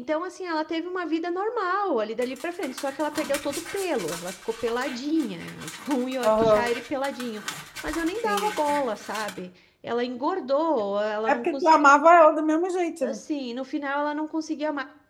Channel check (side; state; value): both; identical; correlation 1.00